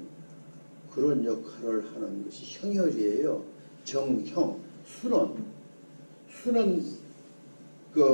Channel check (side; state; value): both; inverted; correlation -1.00